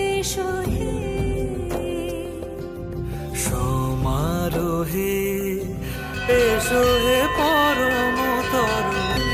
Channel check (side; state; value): both; identical; correlation 1.00